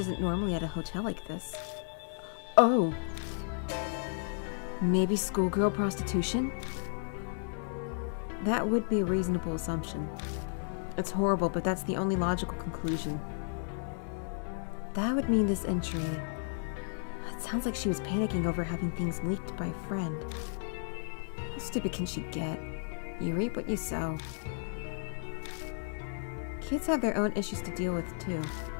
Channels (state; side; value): silent; right; 56 dB below the other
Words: normally at a hotel like this. Oh. Maybe schoolgirl prostitution? That would be a reasonable assumption. It's horrible, but that's the only logical conclusion. That would mean this entry... It sounds like she was panicking over having things leaked by a friend. How stupid can she get? You reap what you sow. Kids have their own issues to deal with, too.